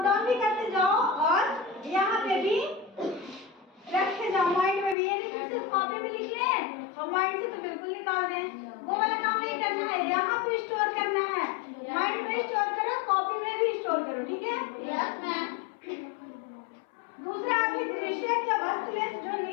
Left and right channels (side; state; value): right; drops out; at 5.0 s